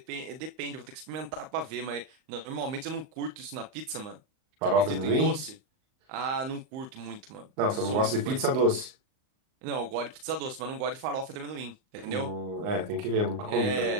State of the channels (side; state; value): left; late; 38 ms